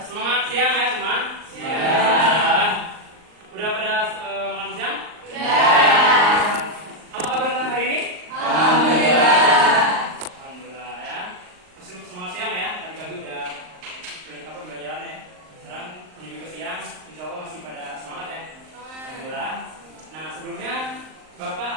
Semangat siang ya semua. Siang. Udah pada makan siang? Apa kabar kalian hari ini? Alhamdulillah ya. Masih semangat siang ya. Tadi pagi udah belajaran ya. Sekarang ini juga siang. Insya Allah masih pada semangat ya. Alhamdulillah. Nah sebelumnya Bapak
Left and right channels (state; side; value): late; left; 38 ms